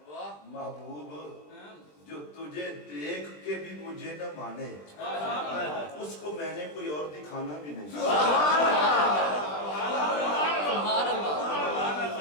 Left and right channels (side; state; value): right; late; 20 ms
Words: محبوب جو تجھے دیکھ کے بھی مجھے نہ مانے اس کو میں نے کوئی اور دکھانا بھی نہیں.